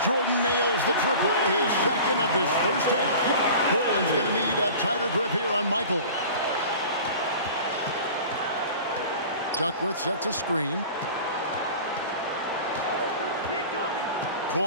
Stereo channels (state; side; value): inverted; both; correlation -0.40